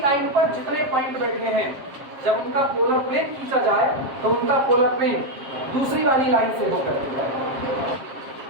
लाइन पर जितने पॉइंट बैठे हैं जब उनका पोलर प्लेन खींचा जाए तो उनका पोलर प्लेन दूसरी वाली लाइन से होकर जाए।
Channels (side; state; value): left; late; 7.5 ms